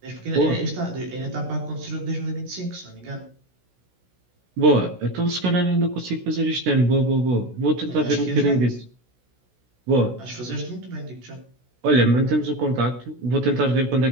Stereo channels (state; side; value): late; left; 16 ms